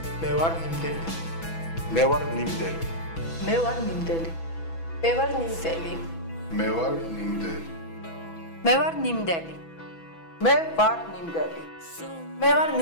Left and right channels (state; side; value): late; right; 6.1 ms